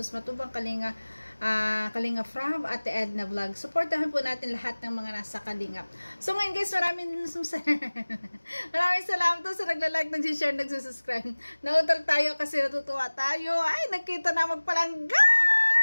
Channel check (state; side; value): inverted; both; correlation -1.00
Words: Matubang Kalinga, Kalinga From at Edna Vlog. Supportahan po natin lahat ng mga nasa Kalingap. So ngayon guys, maraming salamat po sa nagla-like, nag-share, nag-subscribe. Nautol tayo kasi natutuwa tayo. Ay, nakita na magpalangga!